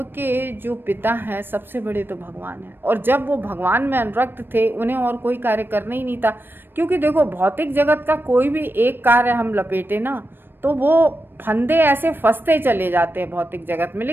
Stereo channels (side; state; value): left; late; 0.098 ms